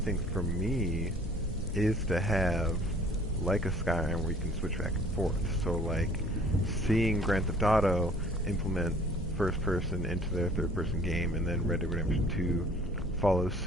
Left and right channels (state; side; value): normal; both; correlation 0.54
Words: for me, is to have like a Skyrim where you can switch back and forth. So, like, seeing Grand Theft Auto implement first-person into their third-person game, and then Red Dead Redemption 2 follow